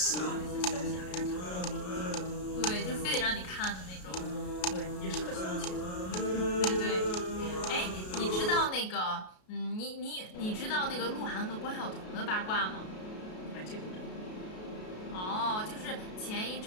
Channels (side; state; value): right; late; 33 ms